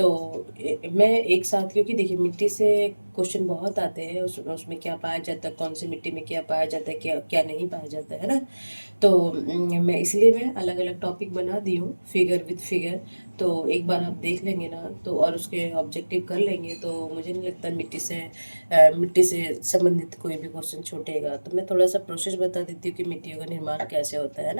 मैं एक साथ, क्योंकि देखिए मिट्टी से क्वेश्चन बहुत आते हैं, उसमें क्या पाया जाता है, कौन सी मिट्टी में क्या पाया जाता है, क्या क्या नहीं पाया जाता है ना। तो मैं अलग अलग टॉपिक बना दी हूँ, फिगर विद फिगर। तो एक बार आप देख लेंगे ना, तो और उसके ऑब्जेक्टिव कर लेंगे, तो मुझे नहीं लगता मिट्टी से संबंधित कोई भी क्वेश्चन छूटेगा। तो मैं थोड़ा सा प्रोसेस बता देती हूँ कि मिट्टियों का निर्माण कैसे होता है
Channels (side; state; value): both; inverted; correlation -1.00